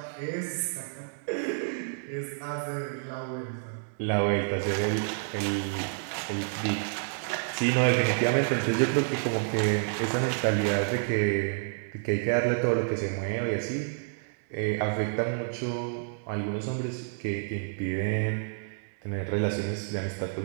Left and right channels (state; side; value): silent; left; digital silence